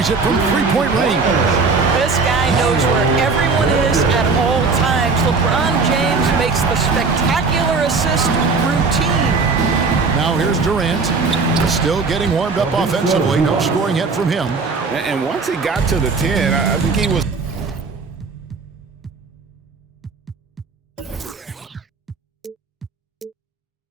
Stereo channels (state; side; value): quieter; left; 4.4 dB